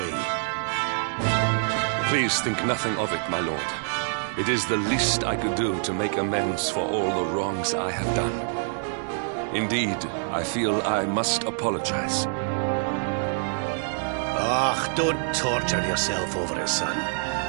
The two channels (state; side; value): silent; left; 61 dB below the other